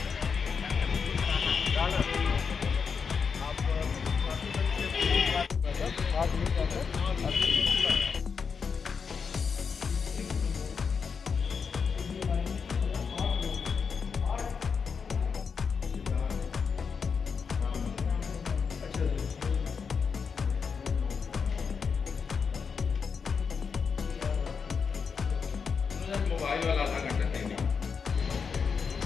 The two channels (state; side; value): quieter; right; 5.9 dB